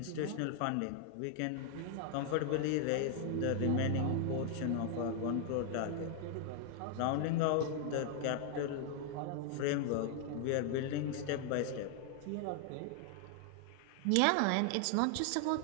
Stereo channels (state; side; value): different; both; correlation 0.00